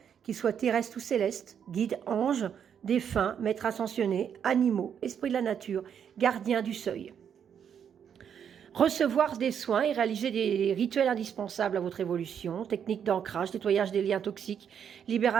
qu'ils soient terrestres ou célestes, guides, anges, défunts, maîtres ascensionnés, animaux, esprits de la nature, gardiens du seuil. Recevoir des soins et réaliser des rituels indispensables à votre évolution, techniques d'ancrage, nettoyage des liens toxiques,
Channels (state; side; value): quieter; left; 8.1 dB